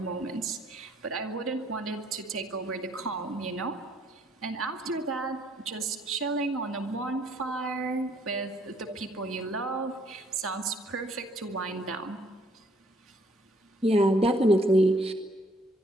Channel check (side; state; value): both; normal; correlation 0.65